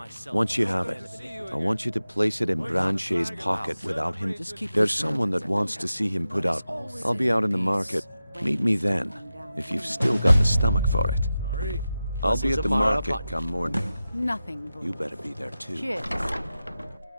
Once you have it, I want you to place it in Branchet's pocket without him. There's someone that wants to see him put out. I'll be out in the market. Meet me then, if you've still got the stomach for it. I'll be at the market come morning. Nothing. You better be there too. Cheers.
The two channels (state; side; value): inverted; both; correlation -0.93